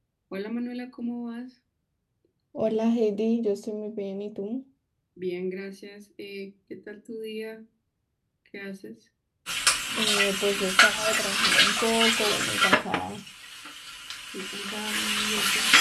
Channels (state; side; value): identical; both; correlation 1.00